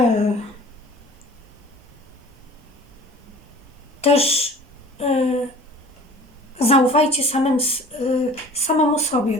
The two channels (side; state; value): both; normal; correlation 0.45